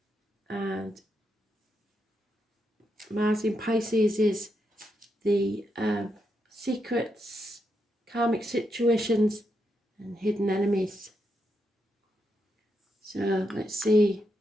and Mars in Pisces is the secrets, karmic situations and hidden enemies. So let's see,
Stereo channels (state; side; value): normal; both; correlation 0.82